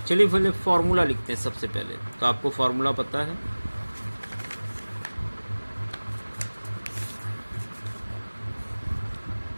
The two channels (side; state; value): both; inverted; correlation -1.00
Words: चलिए पहले फॉर्मूला लिखते हैं सबसे पहले। तो आपको फॉर्मूला पता है,